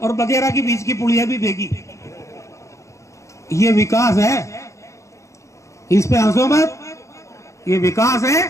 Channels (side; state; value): right; late; 0.15 ms